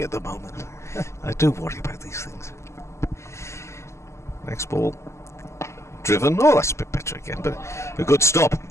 at the moment. I do worry about these things. Next ball, driven. Oh, that's a bit better again, but a good stop.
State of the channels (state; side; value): late; right; 0.13 ms